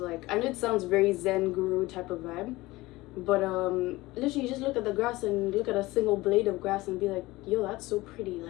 I know it sounds very Zen guru type of vibe, but literally just look at the grass and look at a single blade of grass and be like, yo, that's so pretty.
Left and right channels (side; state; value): right; quieter; 19.8 dB